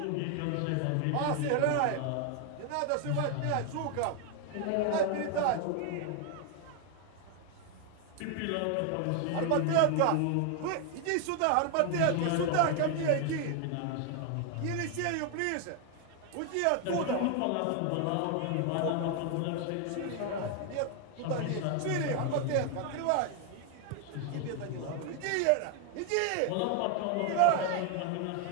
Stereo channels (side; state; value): both; different; correlation 0.00